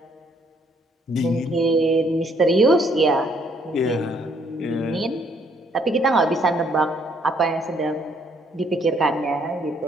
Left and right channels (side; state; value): both; normal; correlation 0.67